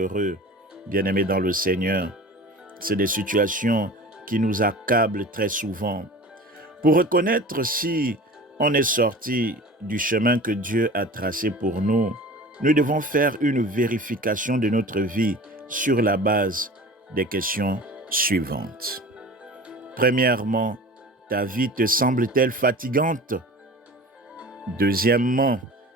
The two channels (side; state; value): both; normal; correlation 0.39